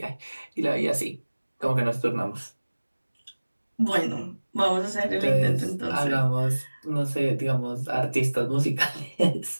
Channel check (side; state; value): both; inverted; correlation -1.00